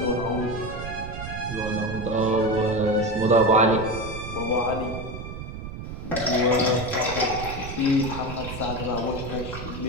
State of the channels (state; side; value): noise; right; rumble, 9 dB below the sound